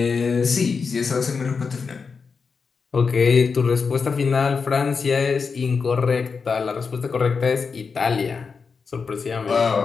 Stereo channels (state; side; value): quieter; right; 5.2 dB